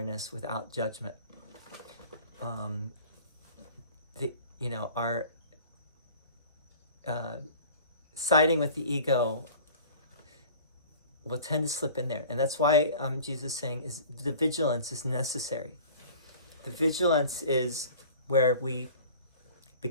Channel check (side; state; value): both; inverted; correlation -0.44